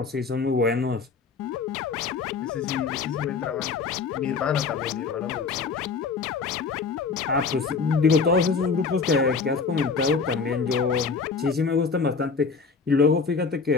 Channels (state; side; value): quieter; right; 4.9 dB